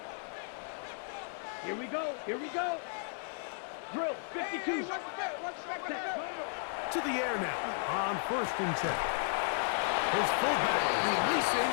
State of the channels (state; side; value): silent; right; digital silence